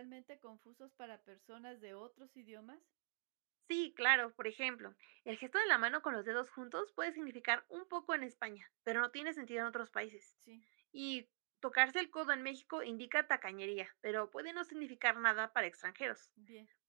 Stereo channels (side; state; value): left; silent; digital silence